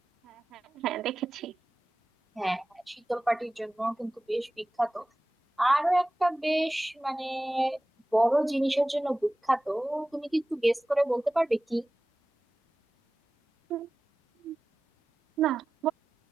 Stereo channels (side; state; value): both; normal; correlation 0.96